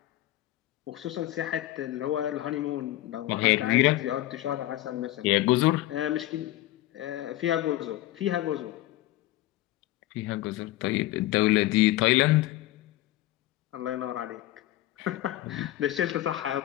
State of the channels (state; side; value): quieter; right; 15.7 dB